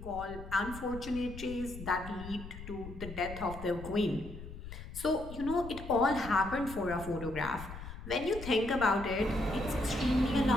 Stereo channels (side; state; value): left; noise; rumble, 11 dB below the sound